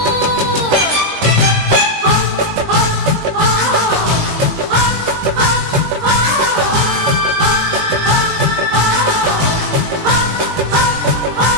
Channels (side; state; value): left; late; 19 ms